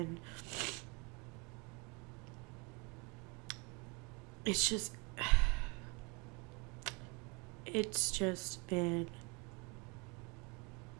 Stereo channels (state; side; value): quieter; left; 29.3 dB